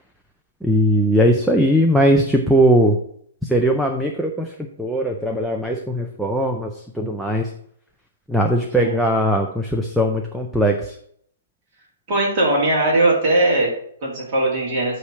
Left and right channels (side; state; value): both; normal; correlation 0.20